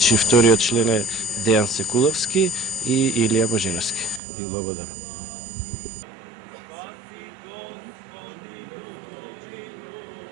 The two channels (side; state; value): left; drops out; at 4.2 s